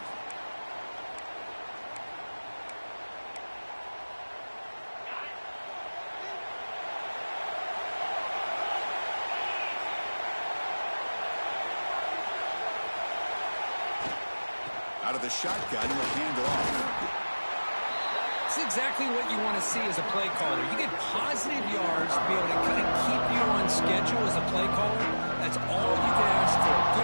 Out of the shotgun, he'll hand it off. That's exactly what you want to see as a play caller. You get positive yards to be able to kind of keep you on schedule as a play caller. That's all you can ask for.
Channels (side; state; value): both; inverted; correlation -1.00